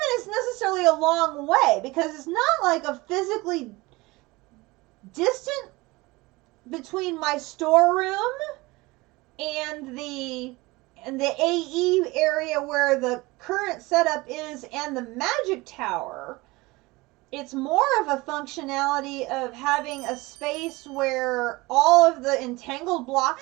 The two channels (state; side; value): quieter; left; 22.2 dB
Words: even necessarily a long way, because it's not like a physically distant between my storeroom and the AE area where the current setup is and the magic tower. It's more of a functionality of having a space where all of the entangled